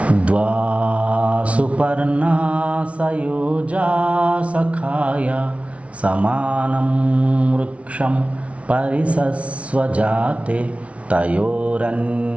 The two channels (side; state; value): left; late; 0.063 ms